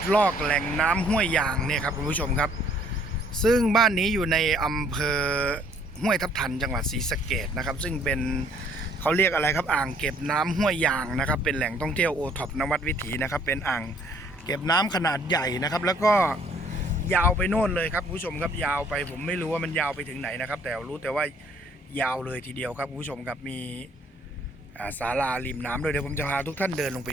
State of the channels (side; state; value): both; normal; correlation 0.61